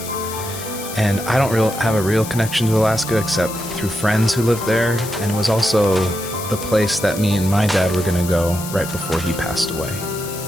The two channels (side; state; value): left; noise; hiss, 11 dB below the sound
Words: and I don't have a real connection to Alaska except through friends who lived there, and it was also the place that me and my dad were going to go right before he passed away.